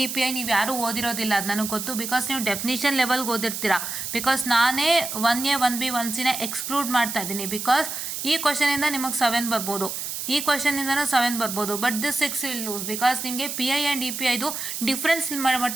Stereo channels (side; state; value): right; noise; hiss, 5 dB below the sound